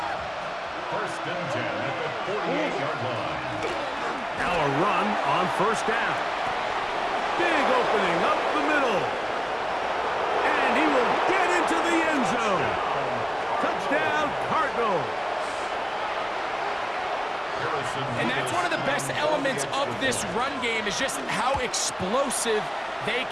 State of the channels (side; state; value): both; identical; correlation 1.00